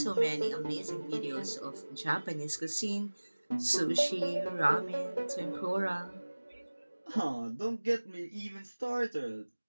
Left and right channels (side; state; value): both; inverted; correlation -1.00